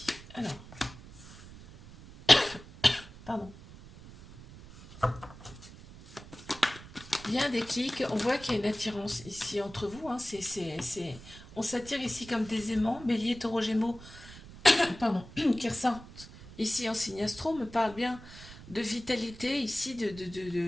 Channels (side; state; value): right; noise; rumble, 17 dB below the sound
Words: Alors. Pardon. Il y a un déclic, on voit qu'il y a une attirance ici entre vous. Hein. On s'attire ici comme des aimants, bélier, taureau, gémeaux, pardon, qui ressortent ici en signe astro, me parle bien de vitalité, ici